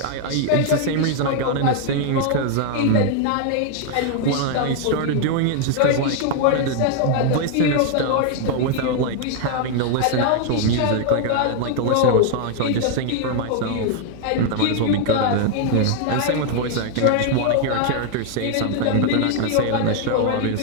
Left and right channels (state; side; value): different; both; correlation 0.00